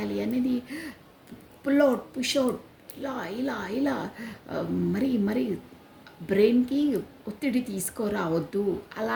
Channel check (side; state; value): both; identical; correlation 1.00